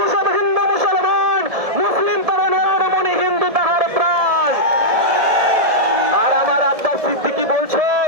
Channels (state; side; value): late; left; 1.7 ms